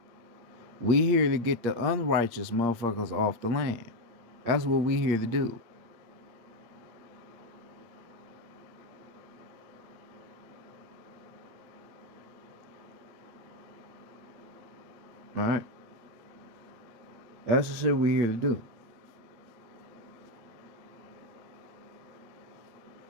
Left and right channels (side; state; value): left; late; 8.6 ms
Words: We here to get the unrighteous motherfuckers off the land. That's what we here to do. Alright? That's the shit we here to do.